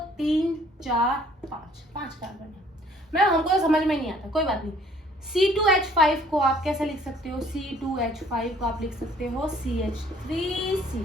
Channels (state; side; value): normal; both; correlation 0.58